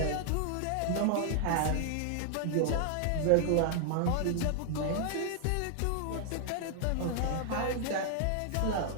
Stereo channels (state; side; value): different; both; correlation 0.00